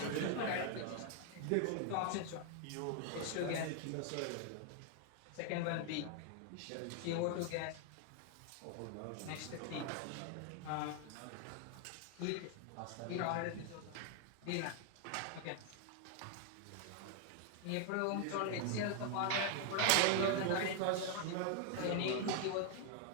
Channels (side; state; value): both; different; correlation 0.00